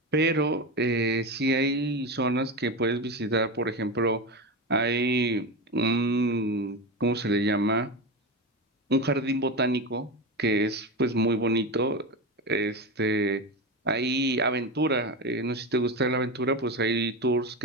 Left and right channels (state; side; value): normal; both; correlation 0.20